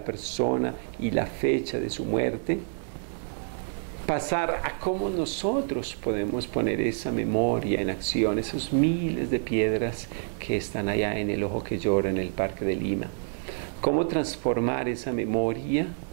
persona y la fecha de su muerte, pasar a cómo nosotros podemos poner esa memoria en acción, esos miles de piedras que están allá en El Ojo que Llora, en el Parque de Lima. Cómo transformar esa memoria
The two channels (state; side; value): silent; left; digital silence